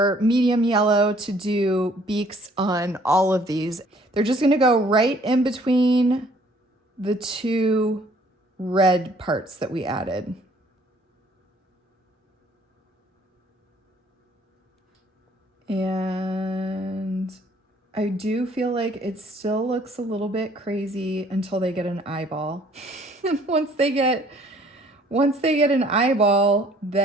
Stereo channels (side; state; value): both; normal; correlation 0.59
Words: medium yellow to do beaks on all of these. They're just gonna go right in between the 2 red parts that we added. And I do feel like it still looks a little bit crazy until they get an eyeball. And once they get an eyeball,